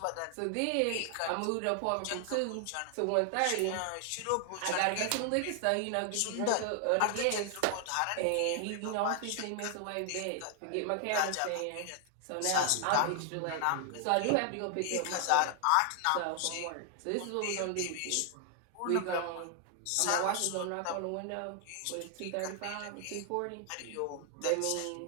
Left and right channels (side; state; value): both; different; correlation 0.00